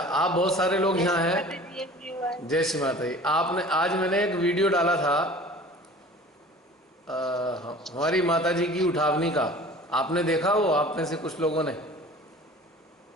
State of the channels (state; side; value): normal; both; correlation 0.44